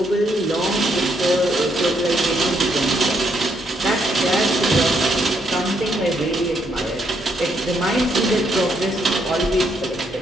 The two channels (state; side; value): normal; both; correlation 0.75